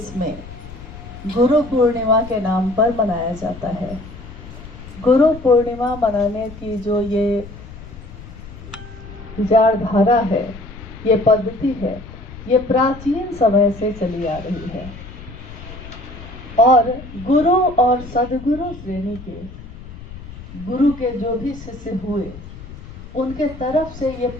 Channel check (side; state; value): left; noise; rumble, 15 dB below the sound